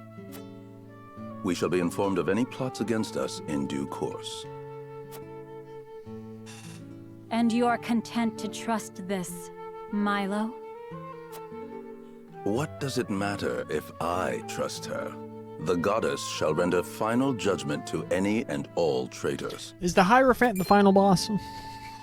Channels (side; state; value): both; identical; correlation 1.00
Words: We shall be informed of any plots against us in due course. And you are content to trust this, Milo? What does it matter if I trust her? The goddess shall render final judgment to any and all traitors. Is the Hierophant the final boss?